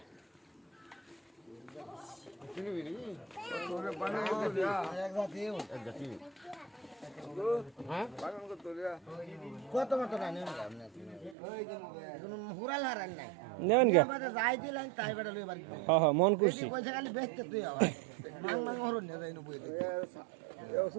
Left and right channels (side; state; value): left; drops out; at 11.4 s